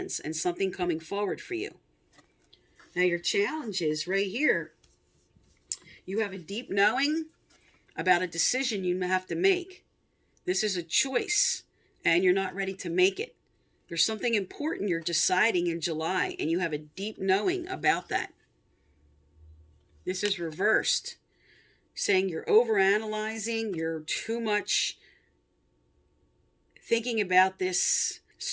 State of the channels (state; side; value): identical; both; correlation 1.00